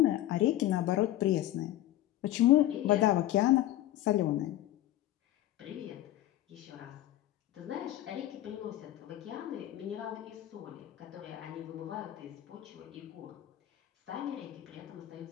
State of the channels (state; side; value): quieter; right; 14.2 dB